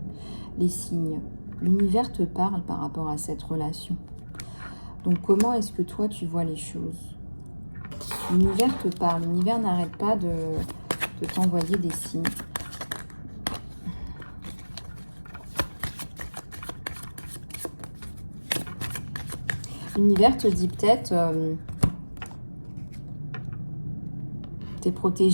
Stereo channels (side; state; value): both; inverted; correlation -1.00